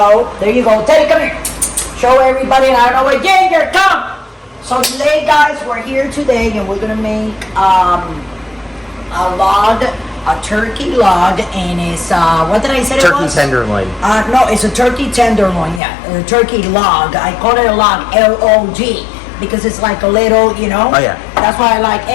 There you go. Teddy, come here. Show everybody. I don't know where Ginger, come. So today, guys, we're here today and we're going to make a turkey log, and it's, what did I say it was? Turkey tenderloin. No, it's a turkey tenderloin, yeah. A turkey log. I call it a log, L-O-G, because it's like a little, you know. Oh, yeah. That's why I like,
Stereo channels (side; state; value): right; drops out; at 15.8 s